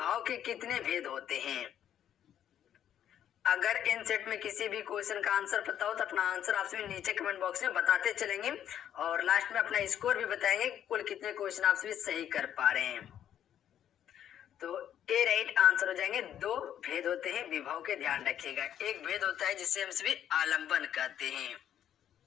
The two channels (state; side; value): quieter; right; 10.2 dB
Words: के कितने भेद होते हैं। अगर इन सेट में किसी भी क्वेश्चन का आंसर पता हो तो अपना आंसर आप सभी नीचे कमेंट बॉक्स में बताते चलेंगे और लास्ट में अपना स्कोर भी बताएंगे कुल कितने क्वेश्चन आप सभी सही कर पा रहे हैं। तो ए राइट आंसर हो जाएंगे। दो भेद होते हैं विभाव के, ध्यान रखिएगा। एक भेद होता है जिसे हम सभी आलंबन कहते हैं,